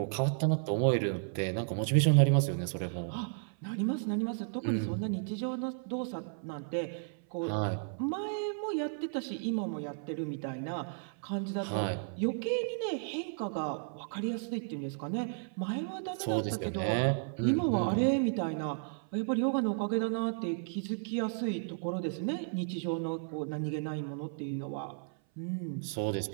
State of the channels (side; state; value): left; silent; 55 dB below the other